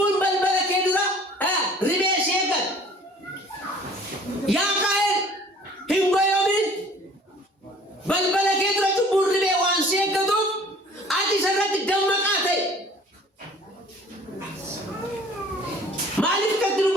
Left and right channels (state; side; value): normal; both; correlation 0.51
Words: balbala kee dura ribee si eeggata. Yaa Qaayil hin goyoomin. Balbala kee dura cubbuun ribee waan si eeggatuuf ati isarratti dammaqaa ta'e. Maaliif akkatti